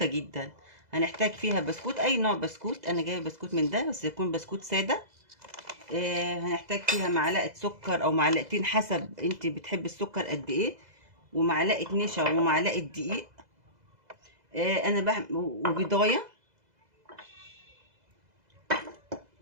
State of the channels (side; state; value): left; late; 2.0 ms